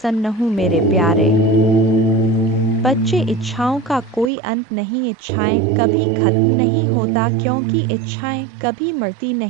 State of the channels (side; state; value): left; drops out; at 4.3 s